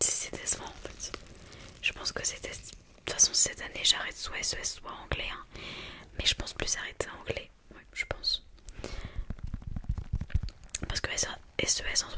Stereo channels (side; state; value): both; identical; correlation 1.00